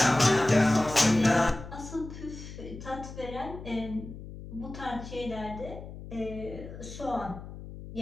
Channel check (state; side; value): noise; left; hum, 12 dB below the sound